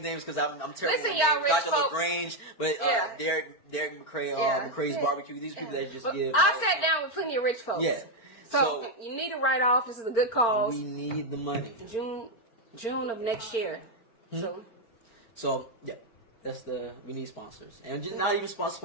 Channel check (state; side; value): late; right; 4.4 ms